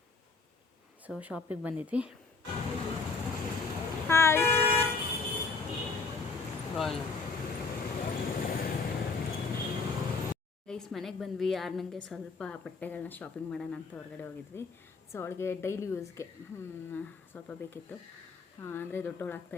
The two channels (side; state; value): right; quieter; 4.3 dB